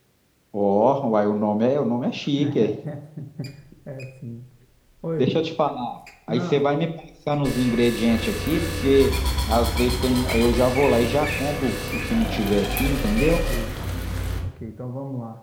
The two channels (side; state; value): both; identical; correlation 1.00